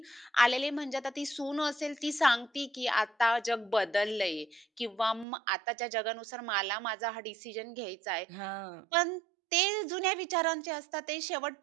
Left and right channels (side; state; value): left; drops out; at 5.2 s